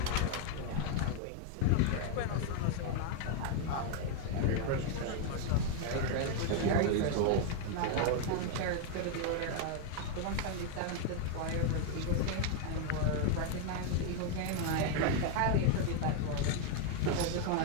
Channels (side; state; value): both; different; correlation 0.01